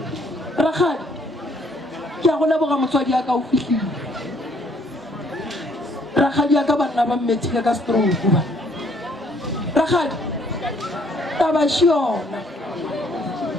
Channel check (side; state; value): both; normal; correlation 0.64